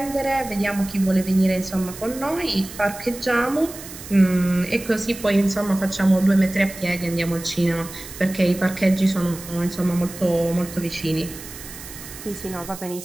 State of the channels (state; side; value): noise; right; hiss, 14 dB below the sound